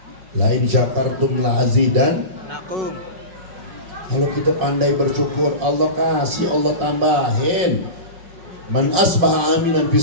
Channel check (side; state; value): left; late; 5.5 ms